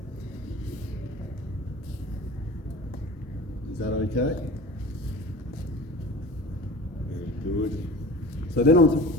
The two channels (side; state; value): both; normal; correlation 0.38